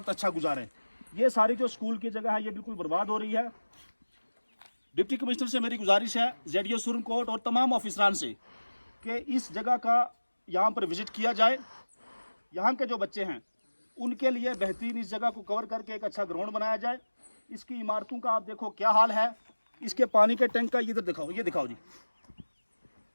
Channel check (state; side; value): inverted; both; correlation -1.00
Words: अच्छा गुजारें। ये सारी जो स्कूल की जगह है ये बिल्कुल बर्बाद हो रही है। डिप्टी कमिश्नर से मेरी गुजारिश है, ZDO सुरनकोट और तमाम ऑफिसरान से, कि इस जगह का यहाँ पर विज़िट किया जाए। यहाँ के जो बच्चे हैं उनके लिए बेहतरीन इस जगह को कवर करके एक अच्छा ग्राउंड बनाया जाए। इसकी इमारतों का आप देखो क्या हाल है। इसके पानी के टैंक का इधर दिखाओ, ये दिखाओ जी,